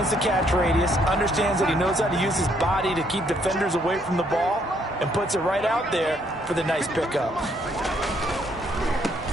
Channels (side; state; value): both; normal; correlation 0.69